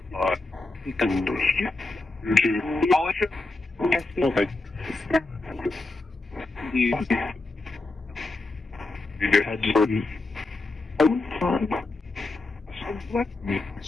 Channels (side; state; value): right; quieter; 3.2 dB